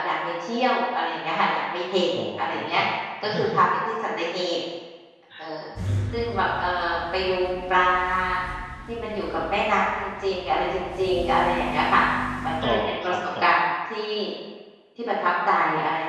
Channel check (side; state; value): both; identical; correlation 1.00